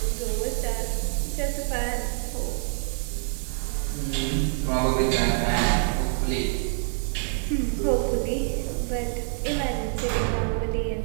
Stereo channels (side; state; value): left; silent; 61 dB below the other